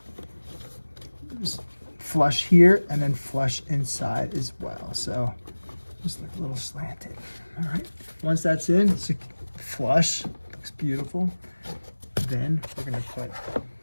flush here and then flush inside as well. So just like a little slanted. All right, once that's in, it's a flush. Looks beautiful. Then we're going to put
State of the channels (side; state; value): both; inverted; correlation -1.00